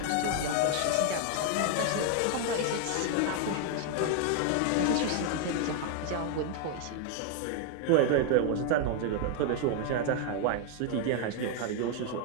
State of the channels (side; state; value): both; different; correlation 0.00